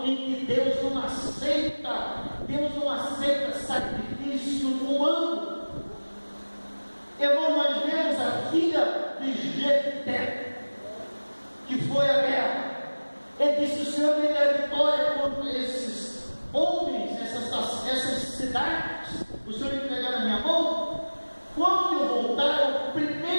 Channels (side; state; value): both; inverted; correlation -1.00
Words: em que Deus não aceita sacrifício humano. Irmão, nós vemos a filha de Jefté, que foi a guerra. Ele disse: o Senhor me dá vitória contra esses homens, essas cidades, o Senhor me entregar na minha mão. Quando eu voltar, a